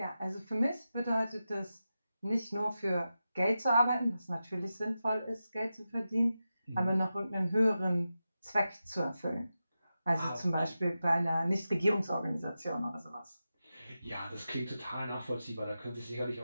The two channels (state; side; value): inverted; both; correlation -0.91